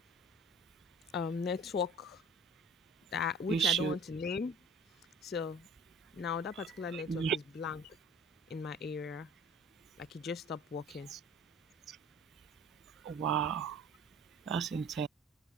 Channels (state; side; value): normal; both; correlation 0.46